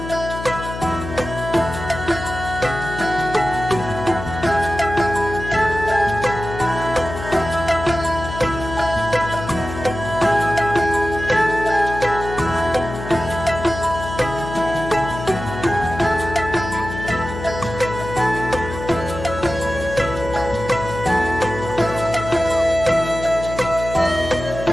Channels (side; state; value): left; noise; hum, 9 dB below the sound